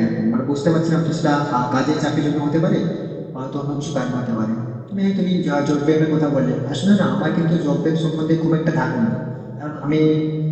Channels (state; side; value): identical; both; correlation 1.00